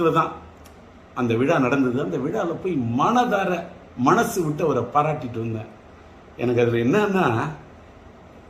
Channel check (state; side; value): identical; both; correlation 1.00